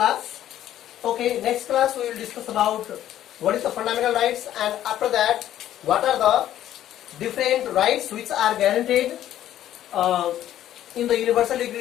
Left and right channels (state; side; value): quieter; right; 12.1 dB